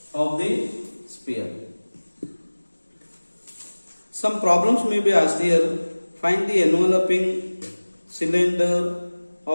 of the sphere. Some problems may be asked here. Find the enveloping cylinder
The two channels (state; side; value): inverted; both; correlation -1.00